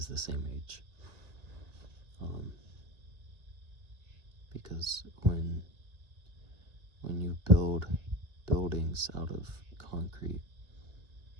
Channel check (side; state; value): left; late; 1.9 ms